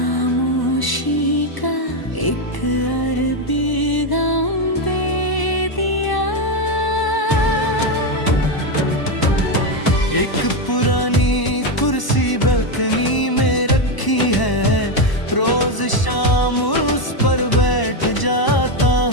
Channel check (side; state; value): right; late; 1.0 ms